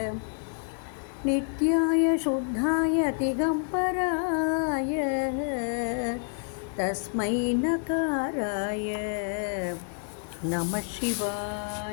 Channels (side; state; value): right; silent; 59 dB below the other